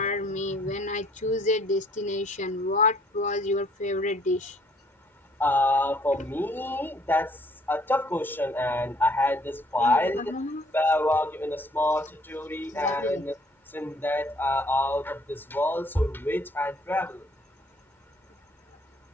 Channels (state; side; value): normal; both; correlation 0.62